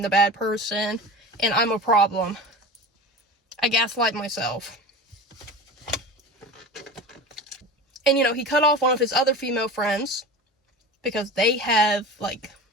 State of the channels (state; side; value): normal; both; correlation 0.31